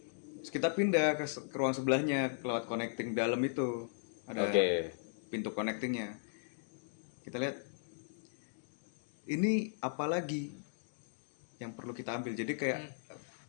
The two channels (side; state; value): right; silent; digital silence